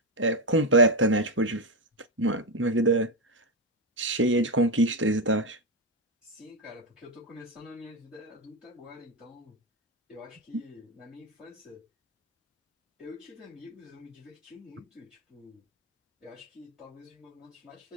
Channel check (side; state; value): both; normal; correlation 0.07